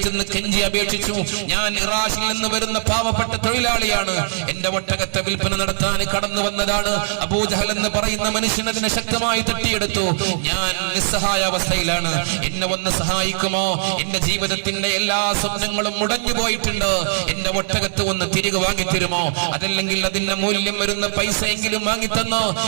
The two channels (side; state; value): left; silent; digital silence